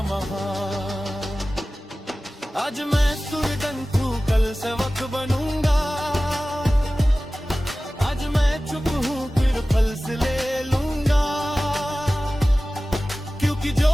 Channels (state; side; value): normal; both; correlation 0.96